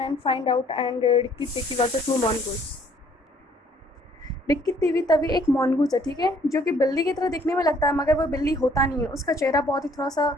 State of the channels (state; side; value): normal; both; correlation 0.61